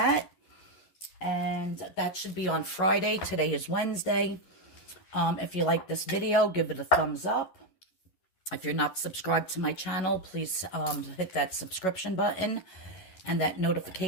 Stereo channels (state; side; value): late; right; 11 ms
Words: And that should be on Friday. Today is Wednesday. If you like this video, give it a thumbs up. If you're not subscribed to my channel, please hit that subscription button and that